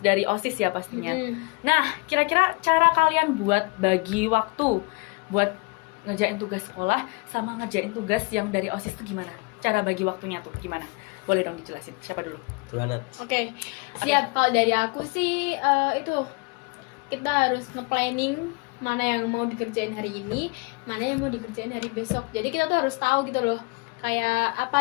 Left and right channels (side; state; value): right; quieter; 29.1 dB